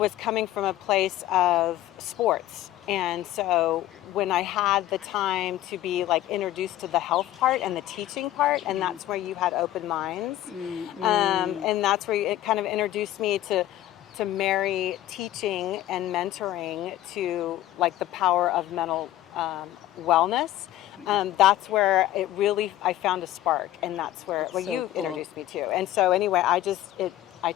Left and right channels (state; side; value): quieter; right; 14.0 dB